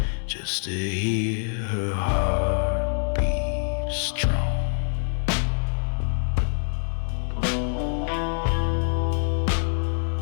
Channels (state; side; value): silent; right; digital silence